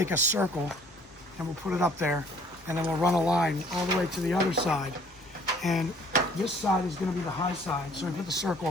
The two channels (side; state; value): both; normal; correlation 0.57